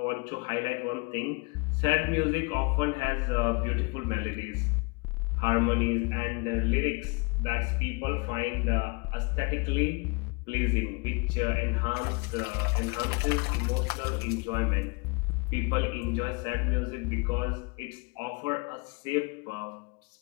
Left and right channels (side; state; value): right; quieter; 28.7 dB